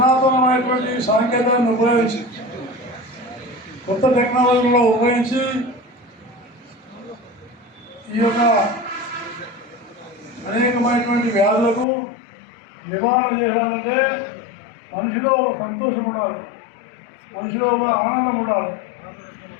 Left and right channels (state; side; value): drops out; right; at 11.9 s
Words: సాంకేతికతను ఉపయోగించి కొత్త టెక్నాలజీలో ఉపయోగించి ఈ యొక్క అనేకమైనటువంటి వ్యాధులకు నివారణ చేయాలంటే మనిషిలో ఒక సంతోషం ఉండాలి, మనిషిలో ఒక ఆనందం ఉండాలి.